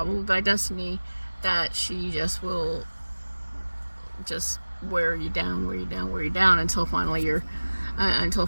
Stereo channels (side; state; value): both; inverted; correlation -1.00